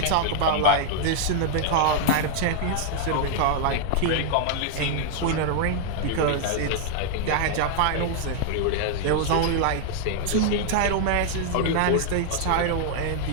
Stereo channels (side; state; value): both; different; correlation 0.00